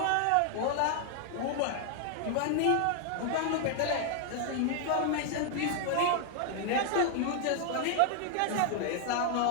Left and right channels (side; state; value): both; different; correlation 0.00